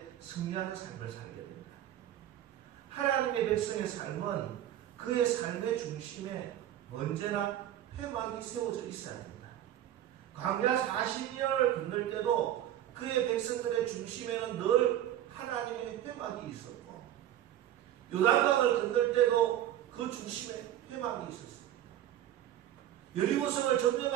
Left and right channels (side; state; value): left; quieter; 12.0 dB